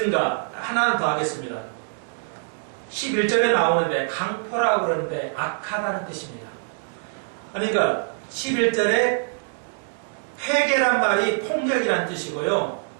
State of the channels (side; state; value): left; silent; digital silence